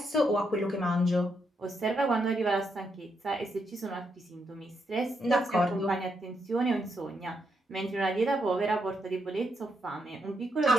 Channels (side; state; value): both; normal; correlation 0.80